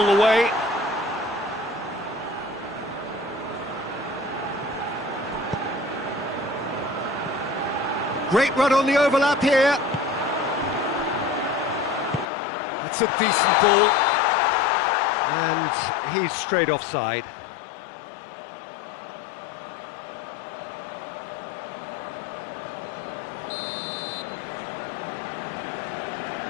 the way. Great run on the overlap here. That's a decent ball. And he's straight offside.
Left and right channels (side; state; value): right; drops out; at 12.2 s